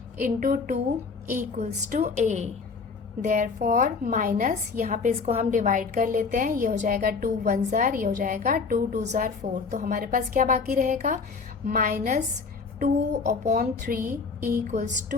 into 2 equals to a। Therefore minus यहाँ पे इसको हम डिवाइड कर लेते हैं, ये हो जाएगा 2 1 जार, ये हो जाएगा 2 2 जार 4। तो हमारे पास क्या बाकी रहेगा, -2/3 equals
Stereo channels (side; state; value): right; quieter; 4.9 dB